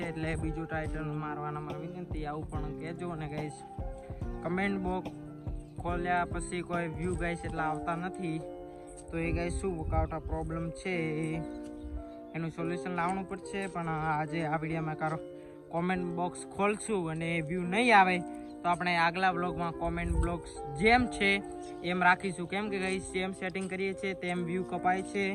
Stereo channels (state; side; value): identical; both; correlation 1.00